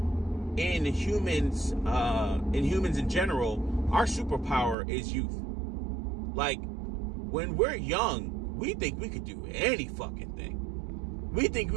humans in general, our superpower is youth. Like, when we're young, we think we could do any fucking thing. We think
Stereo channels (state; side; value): drops out; left; at 4.8 s